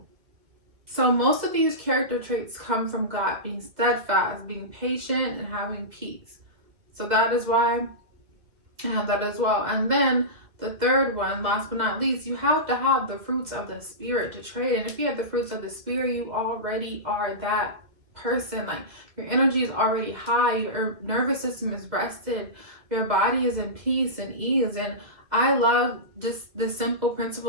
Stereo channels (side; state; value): left; late; 2.4 ms